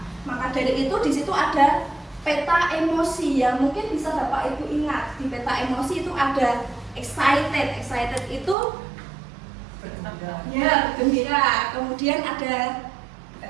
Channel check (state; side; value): drops out; left; at 8.6 s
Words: Maka dari itu di situ ada peta emosi yang mungkin bisa Bapak Ibu ingat. Di peta emosi itu ada excited itu ya gembira. Kemudian ada